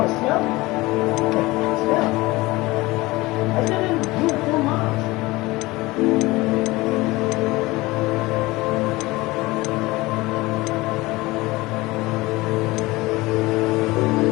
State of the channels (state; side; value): quieter; right; 20.8 dB